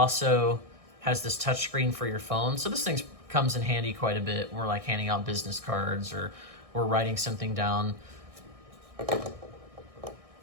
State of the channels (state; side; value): late; left; 1.6 ms